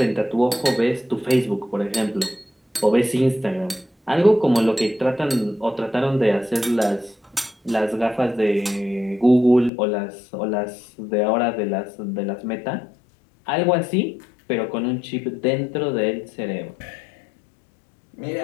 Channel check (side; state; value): right; drops out; at 9.7 s